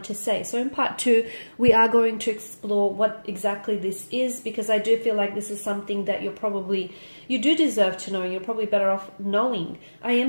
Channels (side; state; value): both; inverted; correlation -1.00